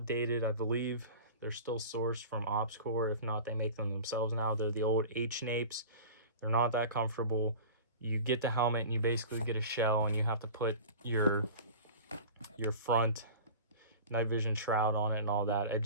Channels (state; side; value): inverted; both; correlation -0.36